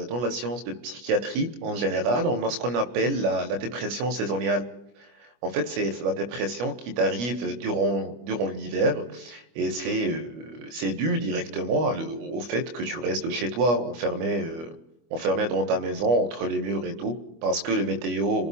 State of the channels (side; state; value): left; late; 25 ms